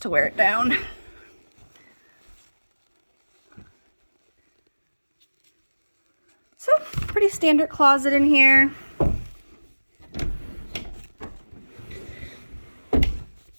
to wear it down. So, pretty standard closet in here.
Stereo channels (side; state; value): both; inverted; correlation -1.00